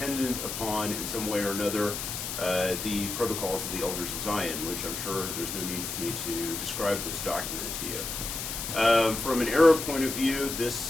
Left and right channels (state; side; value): noise; left; hiss, 5 dB below the sound